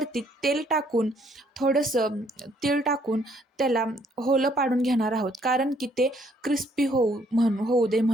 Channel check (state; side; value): normal; both; correlation 0.66